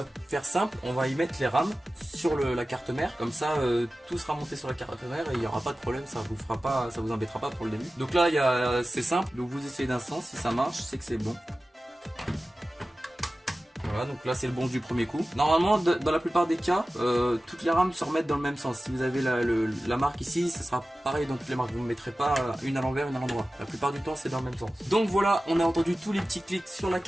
faire simple, on va y mettre les RAM sur la carte mère, comme ça tout sera monté sur la carte mère et il n'y aura pas de problème, ça vous fera pas, ça vous embêtera pas pour le début. Donc là c'est simple, donc vous essayez d'un sens, si ça marche c'est que c'est bon. Voilà, donc là c'est le bon du premier coup. Normalement dans la plupart des cas toutes les rames se remettent dans le même sens. Si vous avez la marque ici, ça sera pareil dans toutes les marques, vous ne mettrez pas une à l'envers, une à l'endroit. La plupart du temps c'est dans le même sens. Donc voilà, on a entendu tous les petits clics sur la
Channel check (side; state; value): both; normal; correlation 0.95